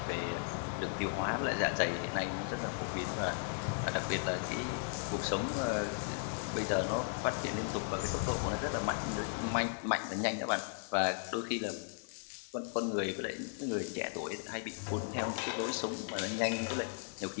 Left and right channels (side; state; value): right; silent; 54 dB below the other